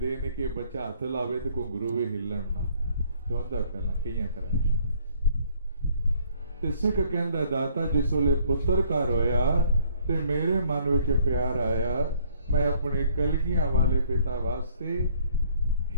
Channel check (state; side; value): inverted; both; correlation -0.61